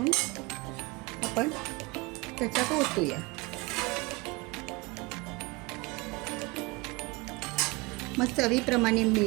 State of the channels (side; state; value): left; quieter; 24.5 dB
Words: आपण त्याच्यात ओतूया. मग चवीप्रमाणे